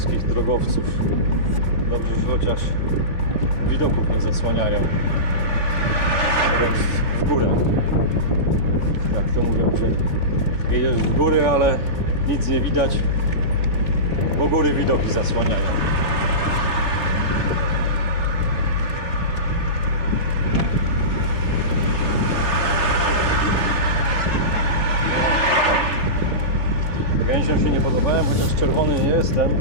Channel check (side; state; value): right; late; 3.5 ms